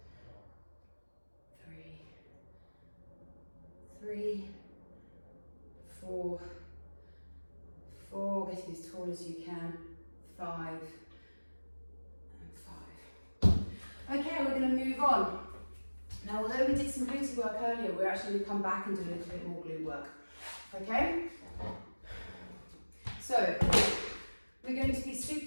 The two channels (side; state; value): both; inverted; correlation -1.00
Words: 3, 4, getting as tall as you can, 5, and 5. Okay, we're going to move on. Now, although we did some glute work earlier, we're actually going to come back and do a little bit more glute work. Okay? So, we're going to be